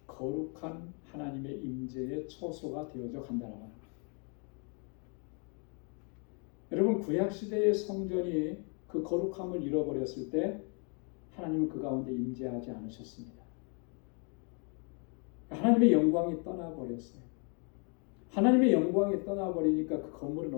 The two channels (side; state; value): right; quieter; 37.8 dB